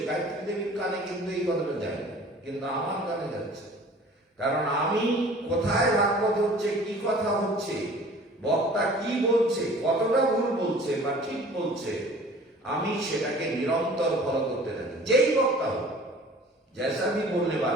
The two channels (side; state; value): both; normal; correlation 0.47